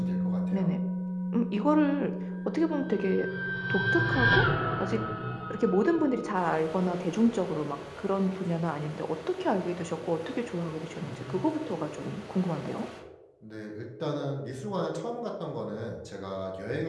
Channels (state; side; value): identical; both; correlation 1.00